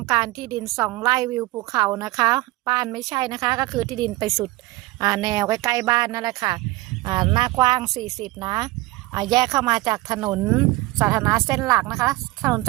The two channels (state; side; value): quieter; left; 19.8 dB